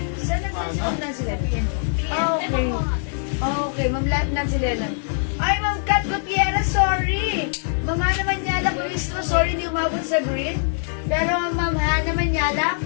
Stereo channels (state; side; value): silent; right; 59 dB below the other